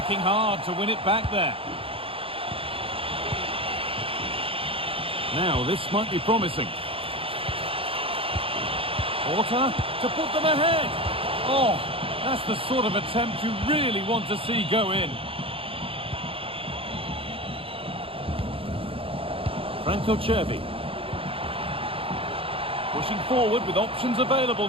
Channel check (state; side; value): late; left; 0.27 ms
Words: hard to win it back there. Now, this might be promising. Porter to put them ahead. Oh, that's the sort of attempt you really want to see go in. Franco Cervi. Pushing forward with options available